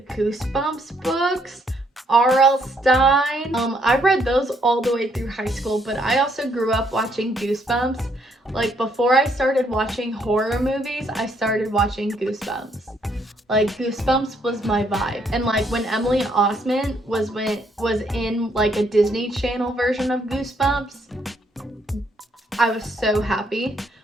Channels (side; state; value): both; normal; correlation 0.71